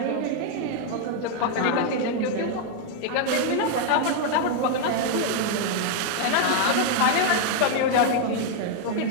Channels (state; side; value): different; both; correlation 0.00